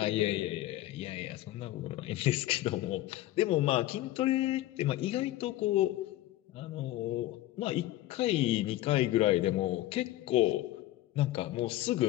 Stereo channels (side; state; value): right; quieter; 15.6 dB